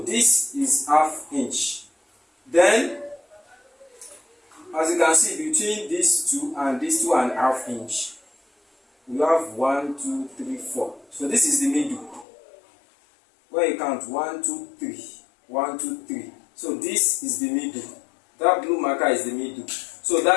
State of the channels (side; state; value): right; drops out; at 12.2 s